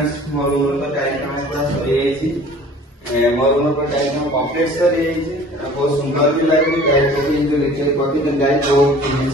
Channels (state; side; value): normal; both; correlation 0.48